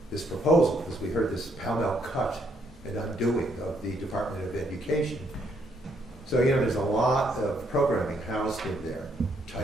this proposal, because we heard this pell-mell cut and undoing of the Department of Education. So, you know, there's a lot of programming housed in there.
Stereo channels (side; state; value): both; normal; correlation 0.71